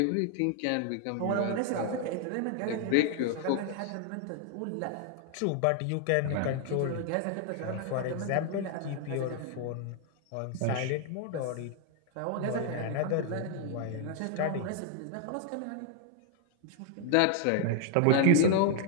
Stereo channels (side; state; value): both; different; correlation 0.00